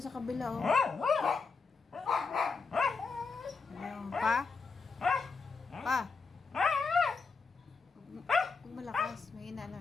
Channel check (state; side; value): quieter; right; 4.7 dB